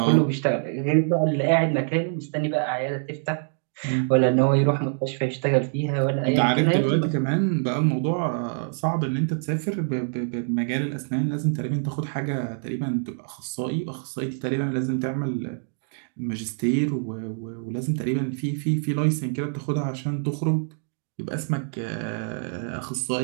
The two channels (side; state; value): left; silent; 62 dB below the other